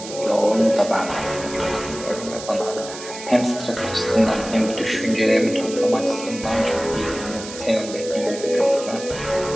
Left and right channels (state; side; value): noise; right; hiss, 12 dB below the sound